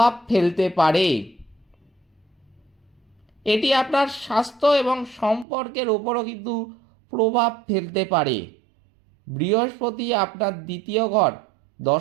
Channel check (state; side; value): drops out; left; at 5.5 s